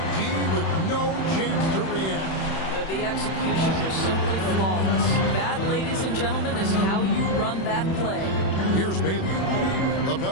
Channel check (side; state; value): right; late; 31 ms